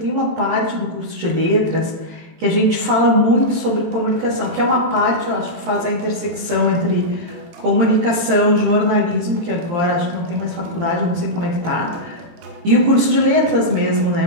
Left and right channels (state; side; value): late; left; 18 ms